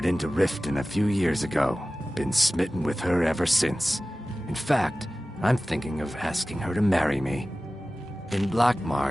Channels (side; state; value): both; normal; correlation 0.96